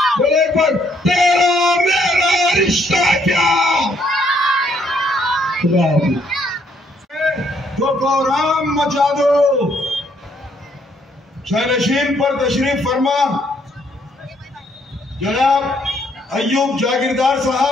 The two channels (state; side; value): normal; both; correlation 0.69